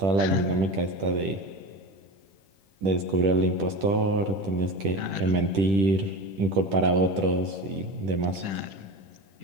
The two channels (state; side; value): late; left; 10 ms